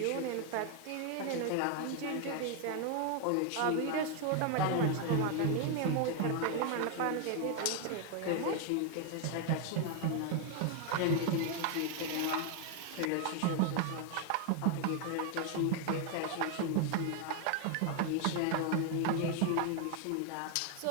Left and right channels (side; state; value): both; different; correlation 0.01